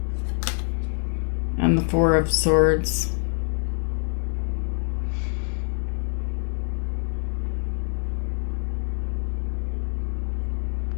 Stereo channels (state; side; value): silent; right; 61 dB below the other